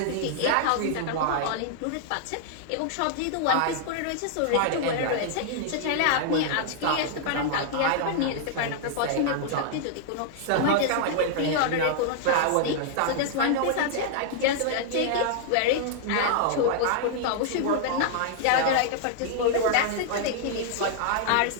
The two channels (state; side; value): different; both; correlation -0.01